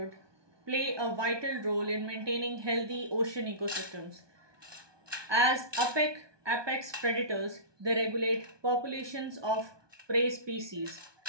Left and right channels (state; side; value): late; left; 1.2 ms